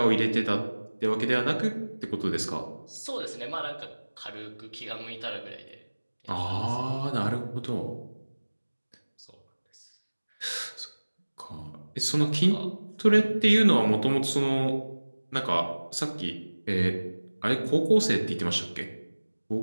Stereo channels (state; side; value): inverted; both; correlation -1.00